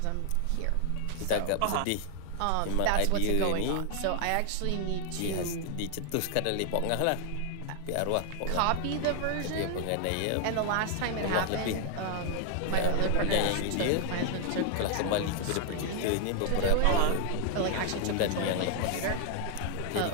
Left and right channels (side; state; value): both; different; correlation 0.00